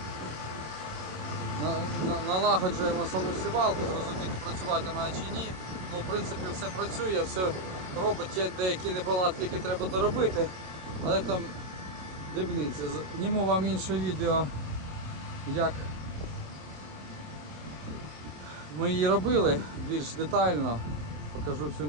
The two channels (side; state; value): left; late; 26 ms